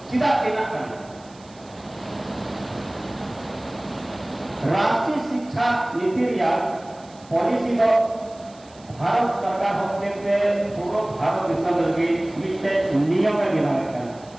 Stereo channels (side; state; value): right; noise; hiss, 26 dB below the sound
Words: सीधा देना करना राष्ट्रीय शिक्षा नीति या पॉलिसी को भारत सरकार होते थे पूरा भारत विश्व की मिटे नियम में बिना रखना